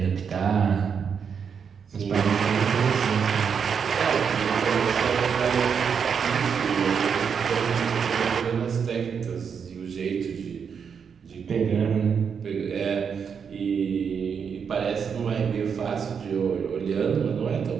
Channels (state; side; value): quieter; left; 6.7 dB